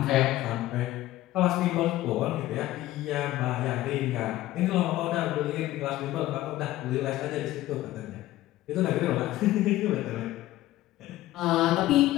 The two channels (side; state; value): right; quieter; 15.6 dB